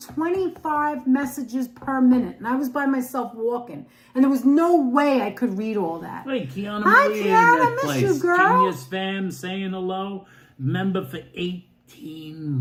25 messages per minute, and I was by myself walking, and there was no way I could read all that. Hey, Kiana Hi, Maria Kiana, in that miss place. you, girl. Genius fam saying hello. Member for 18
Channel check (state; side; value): identical; both; correlation 1.00